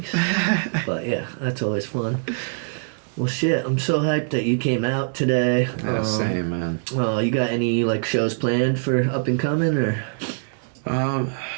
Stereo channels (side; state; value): left; silent; digital silence